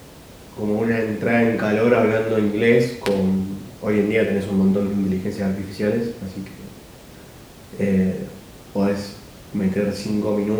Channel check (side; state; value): both; identical; correlation 1.00